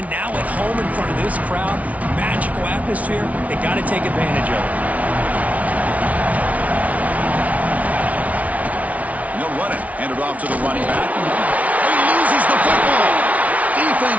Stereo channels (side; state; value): left; late; 0.069 ms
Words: now at home in front of this crowd. Magical atmosphere. They got to take advantage of it. No running. Handed off to the running back. He loses the football.